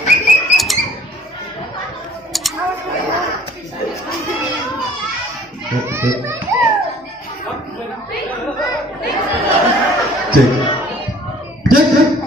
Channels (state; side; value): normal; both; correlation 0.54